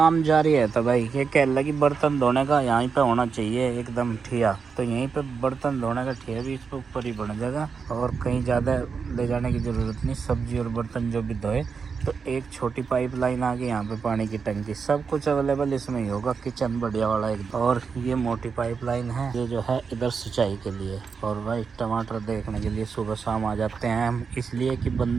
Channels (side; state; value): left; quieter; 5.6 dB